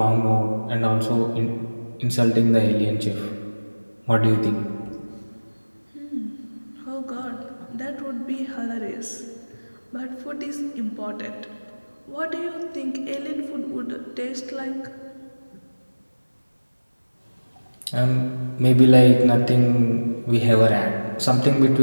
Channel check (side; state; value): both; inverted; correlation -1.00